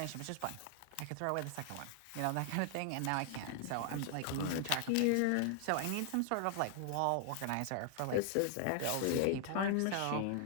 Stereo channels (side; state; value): both; different; correlation 0.00